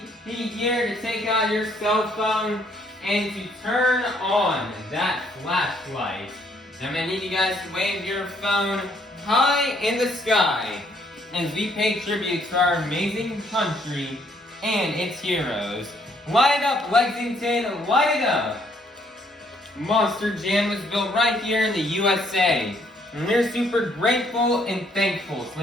here to take out your cell phone and to turn on that flashlight. I'm going to need you guys to wave your phone high in the sky as we pay tribute to our amazing country and its heroes. Light it up, Lexington, light it up! Monster Jam was built right here in the USA. And we're super grateful and thankful to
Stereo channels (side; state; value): both; normal; correlation 0.67